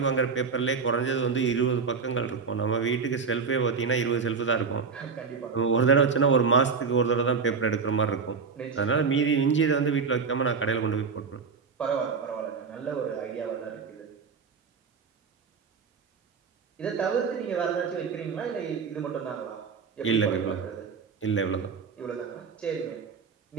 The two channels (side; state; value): left; quieter; 5.4 dB